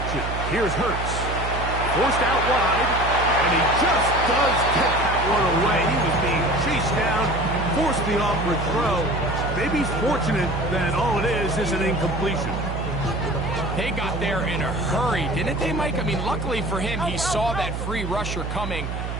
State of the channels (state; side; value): noise; right; hum, 5 dB below the sound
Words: Here's Hurts. Forced out wide. And he just does get that one away. He was being chased down. Forced the awkward throw. Maybe he's fortunate that all it is an incompletion. They got there in a hurry, didn't they, Mike? I mean, luckily for him, he saw that free rusher coming,